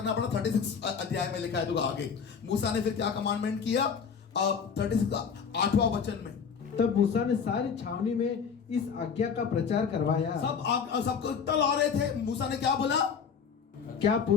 पड़ा? 36 अध्याय में लिखा है तो आगे मूसा ने फिर क्या कमांडमेंट किया? 36 8वां वचन में, तब मूसा ने सारी छावनी में इस आज्ञा का प्रचार करवाया। सबको इतना ला रहे थे। मूसा ने क्या बोला? क्या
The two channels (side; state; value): right; quieter; 6.5 dB